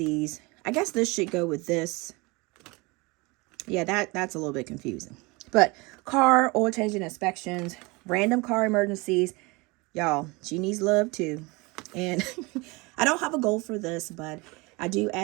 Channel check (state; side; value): quieter; left; 25.5 dB